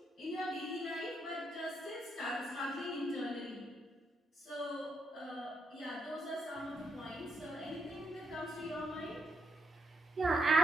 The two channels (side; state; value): both; normal; correlation 0.78